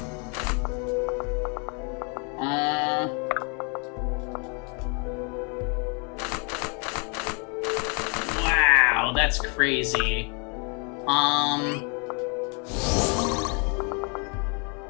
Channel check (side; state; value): right; quieter; 36.0 dB